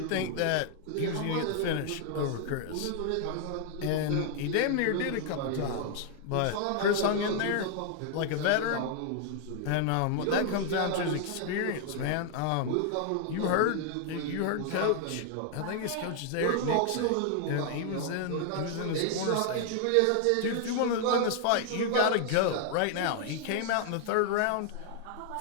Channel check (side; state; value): both; different; correlation 0.00